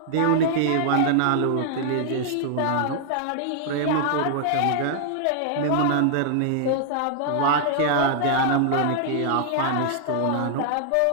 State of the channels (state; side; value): different; both; correlation -0.01